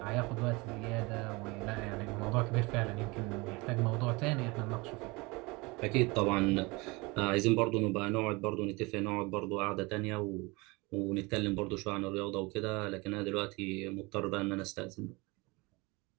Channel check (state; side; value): quieter; left; 25.2 dB